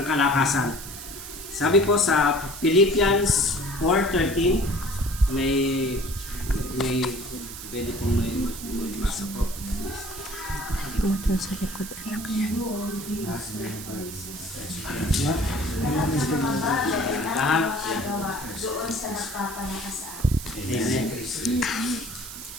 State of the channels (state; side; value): noise; right; hiss, 11 dB below the sound